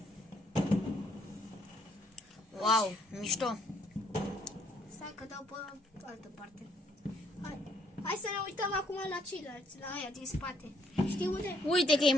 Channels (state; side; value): normal; both; correlation 0.68